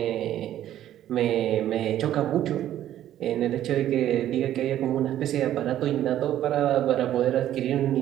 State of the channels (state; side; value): quieter; left; 12.1 dB